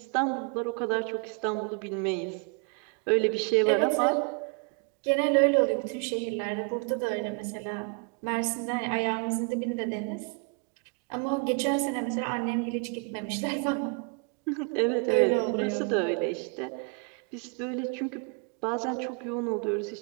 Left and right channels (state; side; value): quieter; left; 36.1 dB